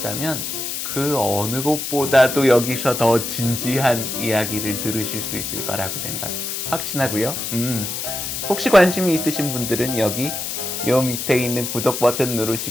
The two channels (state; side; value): noise; left; hiss, 4 dB below the sound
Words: 그 어느 곳보다도 여기서 더 진지한 이야기를 들으실 수 있을 거라고 확신하고요. 혹시 관심이 있으신 분들은 여기 요 밑에 있는 구독 버튼